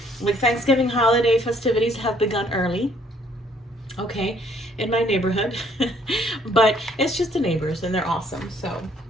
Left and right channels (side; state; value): both; normal; correlation 0.63